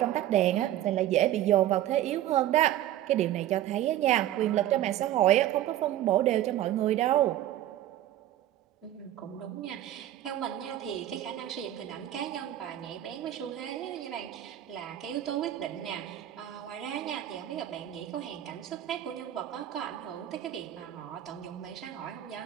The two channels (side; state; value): left; quieter; 12.9 dB